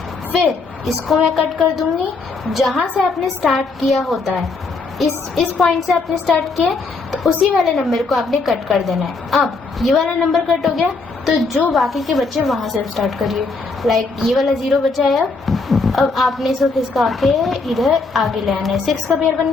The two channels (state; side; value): quieter; right; 4.0 dB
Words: फिर इसको मैं कट कर दूंगी, जहाँ से आपने स्टार्ट किया होता है, इस पॉइंट से आपने स्टार्ट किया, तो उसी वाले नंबर को आपने कट कर देना है। अब ये वाला नंबर कट हो गया, तो जो बाकी के बच्चे वहाँ से स्टार्ट करिए। लाइक ये वाला 0 बचा है, अब आपने इसको खिसका के इधर आगे ले आना है। 6 का पेयर बन